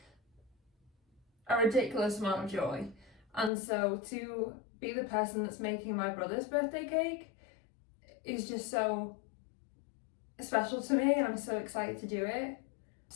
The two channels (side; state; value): right; drops out; at 3.5 s